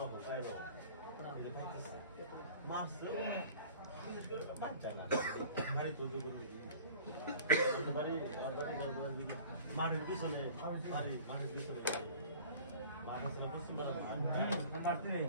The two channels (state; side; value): inverted; both; correlation -0.44